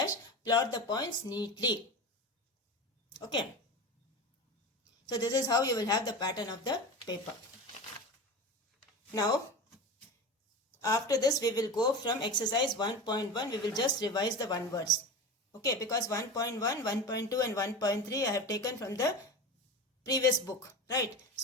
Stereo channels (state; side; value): normal; both; correlation 0.27